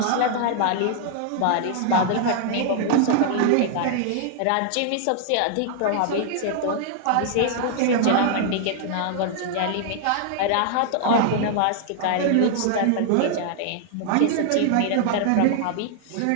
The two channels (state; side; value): different; both; correlation -0.01